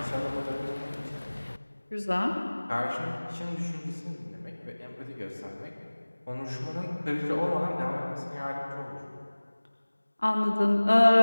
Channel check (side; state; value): both; inverted; correlation -1.00